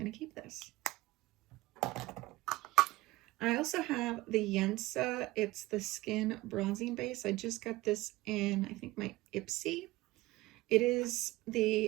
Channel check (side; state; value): left; quieter; 19.1 dB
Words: to keep this. I also have the Yensa. It's the Skin Bronzing Base. I just got this in, I think, my Ipsy. It is